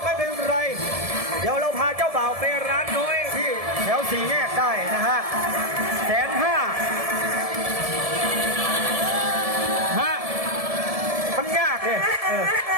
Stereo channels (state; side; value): late; left; 1.7 ms